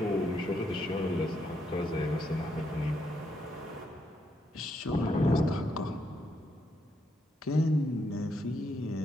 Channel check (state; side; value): normal; both; correlation 0.78